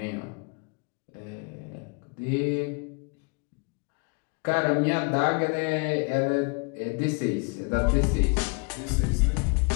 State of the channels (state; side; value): quieter; right; 33.7 dB